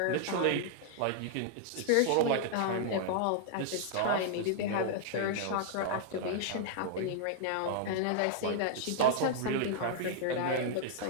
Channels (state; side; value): different; both; correlation -0.01